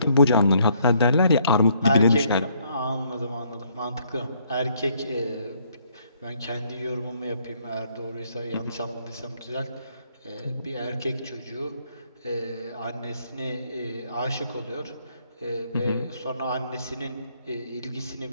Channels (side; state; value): both; inverted; correlation -0.68